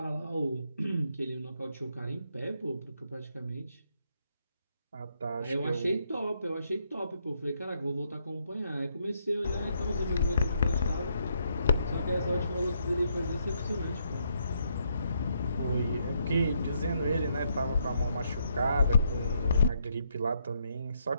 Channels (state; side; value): inverted; both; correlation -0.76